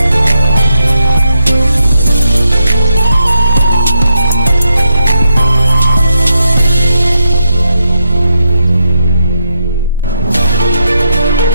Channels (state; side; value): inverted; both; correlation -0.82